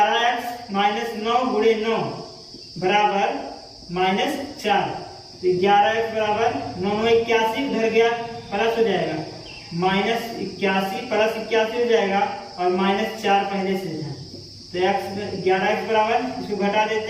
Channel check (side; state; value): both; identical; correlation 1.00